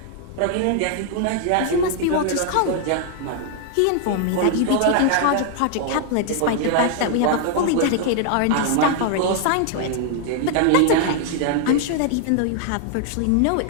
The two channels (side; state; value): both; different; correlation 0.00